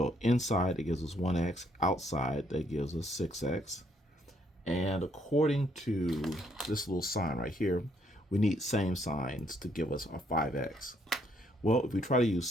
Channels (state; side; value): normal; both; correlation 0.70